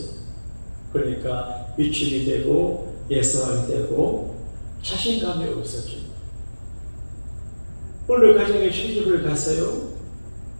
그러니까 위축이 되고 예서하게 되고 자신감이 없어져요. 어느 가정에 시집을 가서요.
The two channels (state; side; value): inverted; both; correlation -1.00